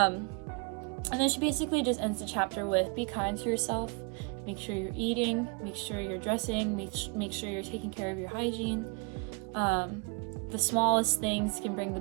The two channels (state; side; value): quieter; left; 33.7 dB